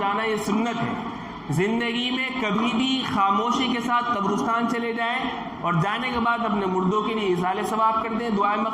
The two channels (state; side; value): identical; both; correlation 1.00